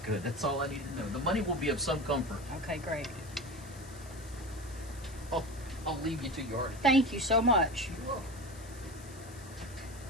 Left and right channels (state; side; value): noise; left; hiss, 19 dB below the sound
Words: That's all I need to know. The money will be of some comfort. Okay, great. I'll leave you to your art. Thank you so much. You're welcome.